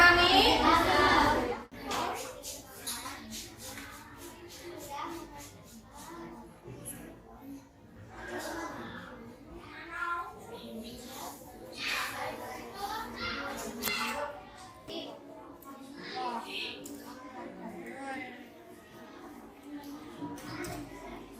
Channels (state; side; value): identical; both; correlation 1.00